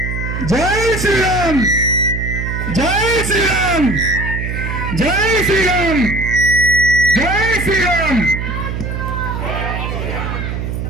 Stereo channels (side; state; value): right; noise; hum, 4 dB below the sound